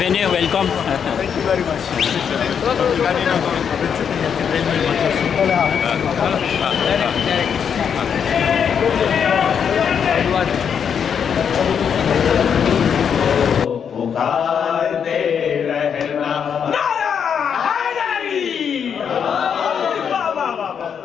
welcome. Thank you very much. पुकारते रहना नारा हैदरी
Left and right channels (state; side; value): quieter; right; 7.5 dB